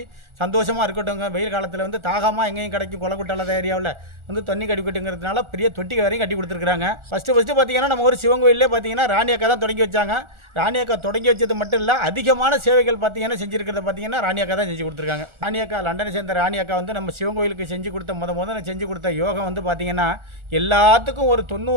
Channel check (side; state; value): left; late; 1.4 ms